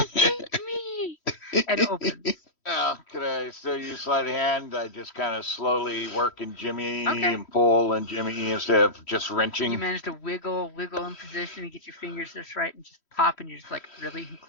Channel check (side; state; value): right; late; 3.1 ms